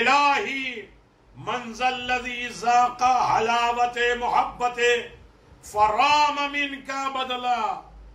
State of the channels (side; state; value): both; identical; correlation 1.00